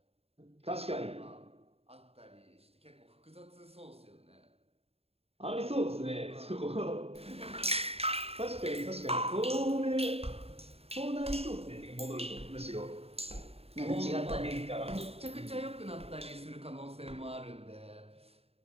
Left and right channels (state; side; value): late; left; 0.29 ms